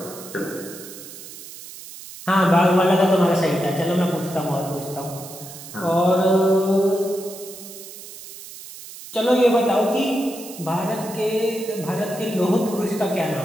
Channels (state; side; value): noise; right; hiss, 14 dB below the sound